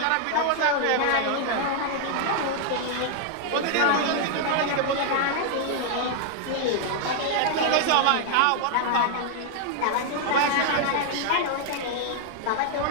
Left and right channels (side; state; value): both; different; correlation 0.00